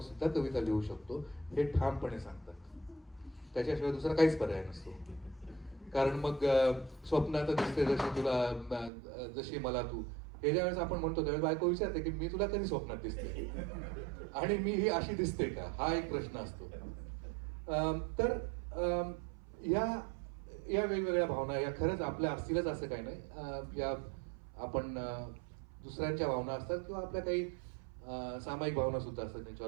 सुद्धा कविता लिहू शकतो हे ठामपणे सांगतात. त्याच्याशिवाय दुसरा काहीच पर्याय नसतो. कारण मग स्वप्नात दिसते जशी तुला, जशी मला तू, हे ज्यावेळेस आपण म्हणतो त्यावेळेस बायको विचारते की मी तुला कधी स्वप्नात दिसते आणि मी ही अशी दिसते का, हा एक प्रश्न असतो. तर या वेगवेगळ्या भावना या खरंच आपल्या असतीलच असं काही नाही. या आपण दुसऱ्यांच्या भावना असतात किंवा आपल्या काही सामायिक भावना सुद्धा असतात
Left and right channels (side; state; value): left; drops out; at 8.9 s